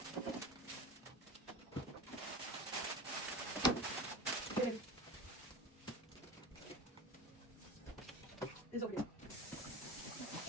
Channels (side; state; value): both; normal; correlation 0.31